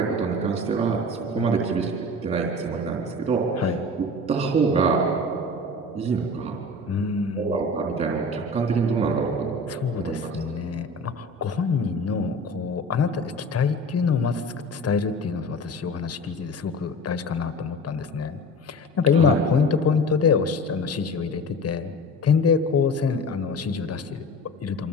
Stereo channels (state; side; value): normal; both; correlation 0.36